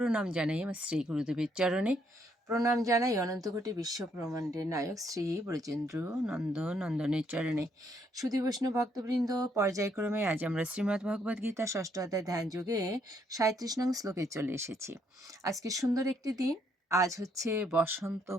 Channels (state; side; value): normal; both; correlation 0.71